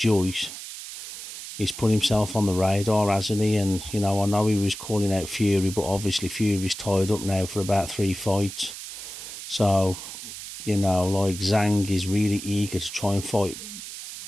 he's put himself on the radar, hasn't he? And, I know he was calling out Fury, but obviously Fury's tied up now for about 3 fights. So, Zhang is really eager to try and fight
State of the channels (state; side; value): noise; right; hiss, 10 dB below the sound